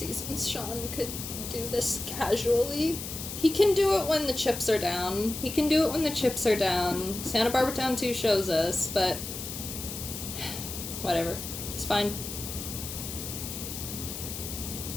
Sean could do this casually. He can do it when the chips are down. Santa Barbara Town 2 shows us, but whatever. It's fine.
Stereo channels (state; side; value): noise; left; hiss, 7 dB below the sound